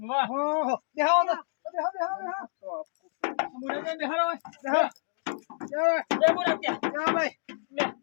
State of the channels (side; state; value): right; silent; digital silence